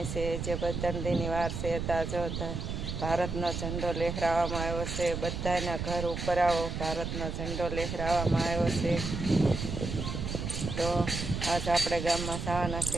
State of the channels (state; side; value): noise; right; rumble, 4 dB below the sound